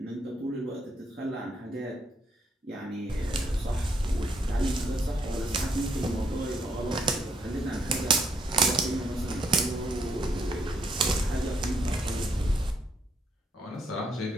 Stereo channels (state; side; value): normal; both; correlation 0.73